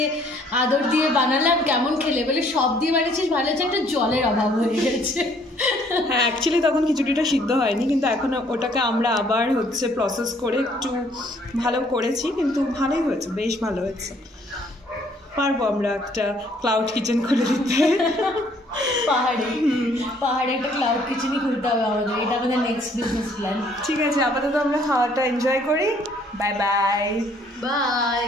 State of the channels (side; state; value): both; normal; correlation 0.62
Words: আদর দিয়ে বানালাম, কেমন খেলে? বলে সব দিয়ে বানিয়েছিস, ভালো হচ্ছে, একটা জলের অভাব হয়ে গেছে। হ্যাঁ, অ্যাকচুয়ালি তখন খিচুড়িটা সিদ্ধ হয়নি, কিন্তু এখন ওটাকে আমরা আবার হচ্ছে প্রসেস করে একটু ভালো করেছি, কিন্তু ভালোই হয়েছে, বেশ ভালো হয়েছে। পারবো আমরা একটা ক্লাউড কিচেন করে দিতে। পাহাড়ে একটা ক্লাউড কিচেনই খুলতে হবে আমাদের, এটা আমাদের নেক্সট বিজনেস প্ল্যান। ঠিক আছে, আপাতত আমরা খাওয়াটা এনজয় করি। Bye bye. বাই।